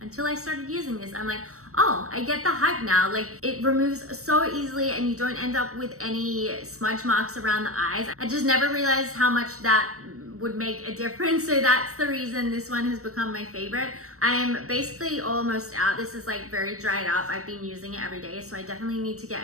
I started using this. I'm like, oh, I get the hype now. Like, it removes so easily and you don't end up with any smudge marks around the eyes. I just never realized how much that would make a difference. So that's the reason this one has become my favorite. I am basically almost out. This is like very dried up. I've been using it every day, so I definitely need to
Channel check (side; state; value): left; late; 0.65 ms